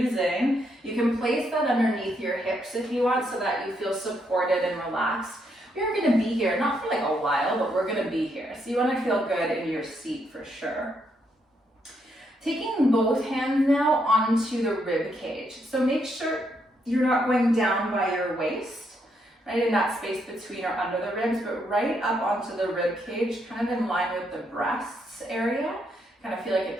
you can place that underneath your hips if you want so that you feel supported and relaxed. We're going to be here, not for like a while, but we're going to be here. So you want to feel good in your seat for sure. Taking both hands now onto the rib cage. So make sure you're not going down by your waist, right in that space between or under the ribs, but right up onto the rib cage, kind of in line with the breasts area. Kind of feel like a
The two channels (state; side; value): normal; both; correlation 0.76